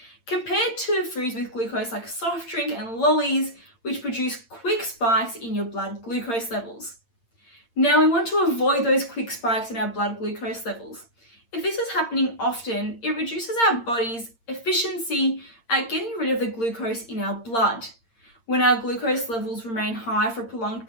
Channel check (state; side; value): late; right; 8.7 ms